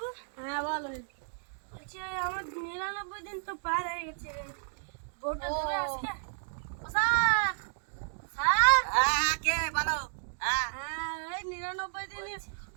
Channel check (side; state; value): left; silent; digital silence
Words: হ্যাঁ বলো। বলছি আমার 99 দিন তো পার হয়ে গেছে, বউটা দেবে আজকে? ও স্যার, স্যার, হ্যাঁ কে বলো? হ্যাঁ হ্যাঁ এই 99 দিনে